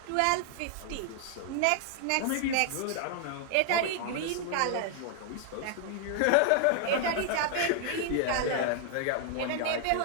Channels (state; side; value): different; both; correlation 0.00